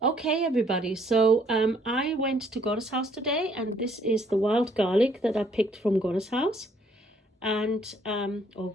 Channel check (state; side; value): normal; both; correlation 0.65